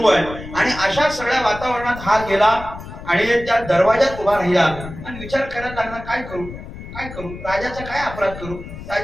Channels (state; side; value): noise; left; rumble, 12 dB below the sound